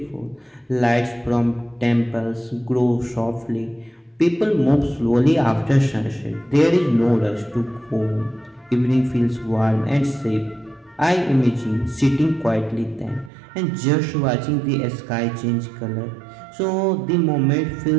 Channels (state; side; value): drops out; left; at 13.3 s